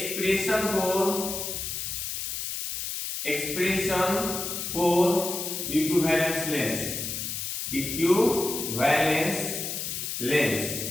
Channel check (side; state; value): left; noise; hiss, 4 dB below the sound